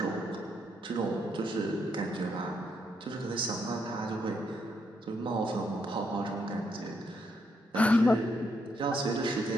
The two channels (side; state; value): both; normal; correlation 0.76